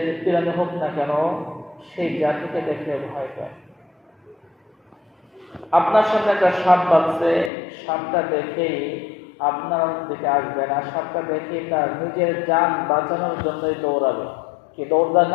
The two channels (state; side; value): drops out; right; at 7.5 s